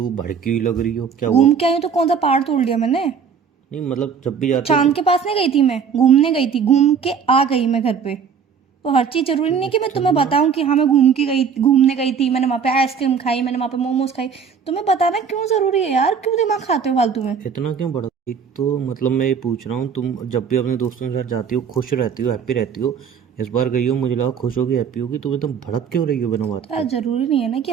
भड़की हुई लग रही हो। क्या हुआ? घूम के आई हूँ तो कौन सा पहाड़ तोड़ लिया मैंने? नहीं मतलब जब भी जाते हो चांद तो के पास नहीं गई थी मैं, घूमने गई थी, घूम के आ गई मैं घर पे। तो हर चीज़ ज़रूरी नहीं कि मैं तुम्हें इतना बताऊँ कि हाँ मैं घूमने गई थी, मैंने वहाँ पे आइसक्रीम खाई, मैंने वहाँ पे मोमोज खाई। तुम्हें बताना क्यों ज़रूरी है यार? क्यों दिमाग खाते हो फालतू में? इतना क्यों बढ़ा? एक तो मतलब मैं ये पूछ रहा हूँ, तुम जब भी अपने दोस्तों के साथ जाती हो खुश रहती हो, हैप्पी रहती हो। इस बार गई हो, मुझे लगा खुश होगी, हैप्पी होगी। तुम एकदम भड़क क्यों रही हो बिना बात यार के? ज़रूरी नहीं है ना कि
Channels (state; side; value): quieter; left; 6.6 dB